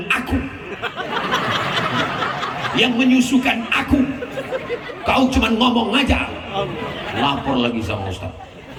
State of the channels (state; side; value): identical; both; correlation 1.00